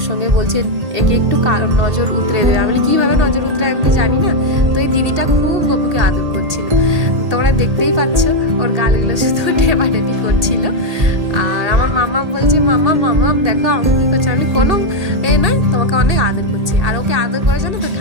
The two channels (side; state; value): left; late; 1.8 ms